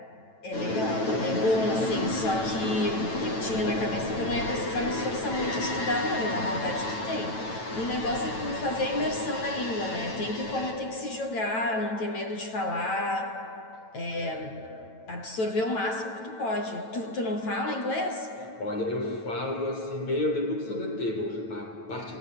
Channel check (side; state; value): right; late; 9.1 ms